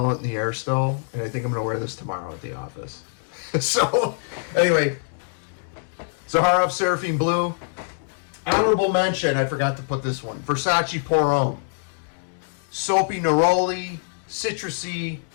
it in the air still, and I think I'm going to wear this tomorrow at the office. So, anyway, Zaharoff Seraphim Blue. Honorable mention, I forgot to put this one. Versace Homme. Soapy neroli, citrusy.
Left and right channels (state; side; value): silent; right; digital silence